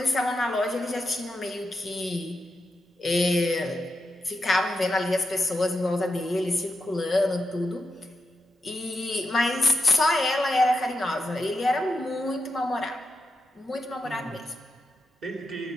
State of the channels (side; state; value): both; normal; correlation 0.86